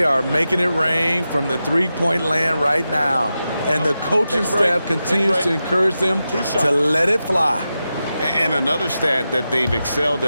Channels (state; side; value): inverted; both; correlation -0.91